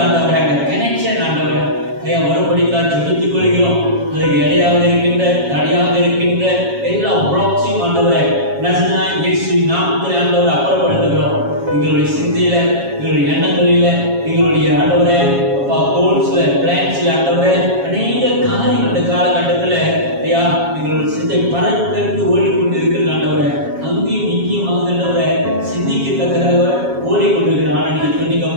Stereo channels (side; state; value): left; late; 7.3 ms